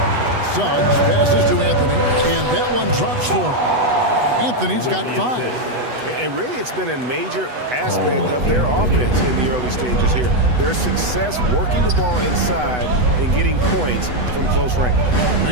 Suggs passes to Anthony, and that one drops for him. Anthony's got 5. And really, it's been a major aspect of their offense in the early stages here. Their success working the ball inside and getting points from close range.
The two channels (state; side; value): late; left; 8.0 ms